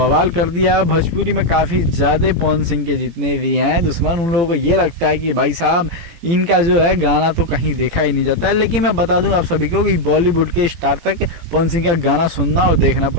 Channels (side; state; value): left; late; 18 ms